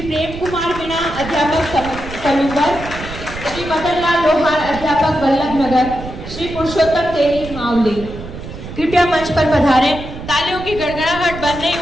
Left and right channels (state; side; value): noise; right; rumble, 11 dB below the sound